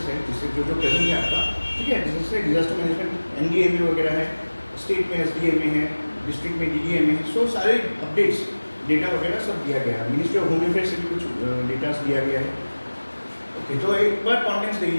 है जिससे जो प्रेजेंट है आपका, ठीक है, जैसे डिजास्टर मैनेजमेंट NDMA वगैरह है, स्टेट में SDMA है, डिस्ट्रिक्ट में DDMA है, सो सारे अपडेट्स डेटा वगैरह सब दिया गया है। मिनिस्ट्री ऑफ होम अफेयर्स से भी कुछ डेटा दिया गया है। ओके, तो एक बार कॉन्टेंट्स देख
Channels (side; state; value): both; inverted; correlation -1.00